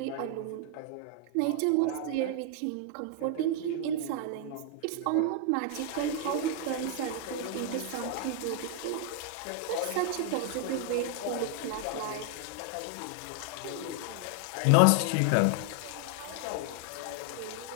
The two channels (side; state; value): both; different; correlation 0.00